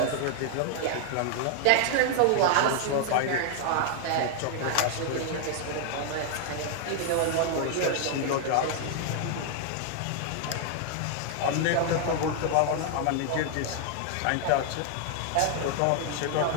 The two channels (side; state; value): both; different; correlation 0.00